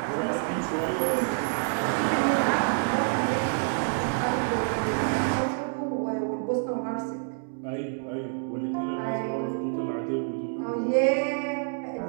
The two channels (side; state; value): left; silent; digital silence